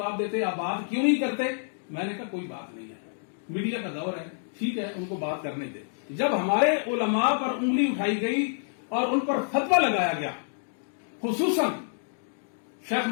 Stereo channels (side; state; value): right; silent; digital silence